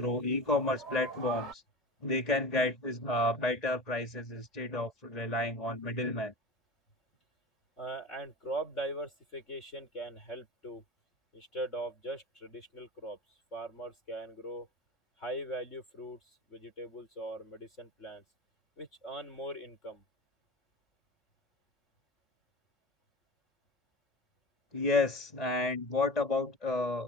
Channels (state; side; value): normal; both; correlation 0.32